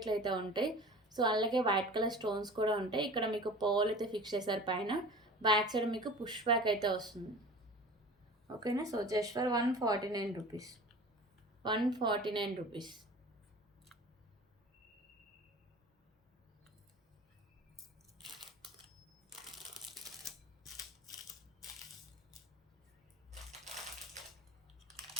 అయితే ఉంటాయి. సో అలాగే వైట్ కలర్ స్టోన్స్ కూడా ఉంటాయి. ఇక్కడ మీకు పోల్ అయితే ఫిక్స్ చేశారు పైన. బ్యాక్ సైడ్ మీకు పుష్ బ్యాక్ అయితే వస్తుంది. ఓకేనా. So just for 149 rupees. 149 rupees.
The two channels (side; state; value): both; normal; correlation 0.39